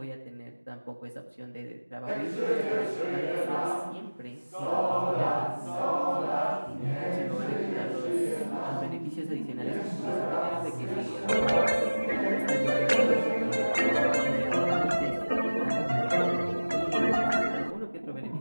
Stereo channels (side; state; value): both; inverted; correlation -1.00